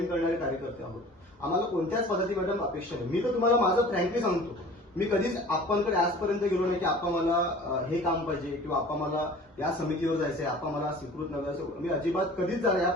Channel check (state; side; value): normal; both; correlation 0.44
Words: करणारे कार्यकर्ते आहोत. आम्हाला कोणत्याच पद्धती मॅडम अपेक्षा नाही. मी तर तुम्हाला माझं फ्रँकली सांगतो, मी कधीच आप्पांकडे आजपर्यंत गेलो नाही की आप्पा मला हे काम पाहिजे किंवा आप्पा मला या समितीवर जायचंय, आप्पा मला स्वीकृत नगरसेवक, मी अजिबात कधीच जाणार,